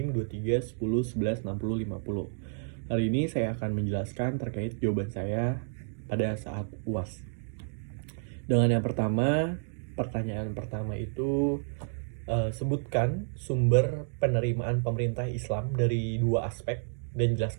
23 10 11 60 50. Hari ini saya akan menjelaskan terkait jawaban saya pada saat UAS. Dengan yang pertama, pertanyaan pertama itu sebutkan sumber penerimaan pemerintah Islam dari dua aspek dan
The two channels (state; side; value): silent; left; digital silence